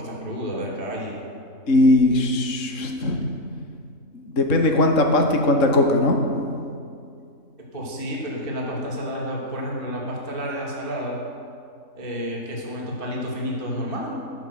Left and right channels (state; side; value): late; right; 3.6 ms